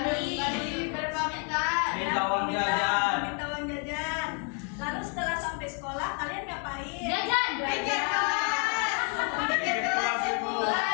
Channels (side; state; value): right; quieter; 39.5 dB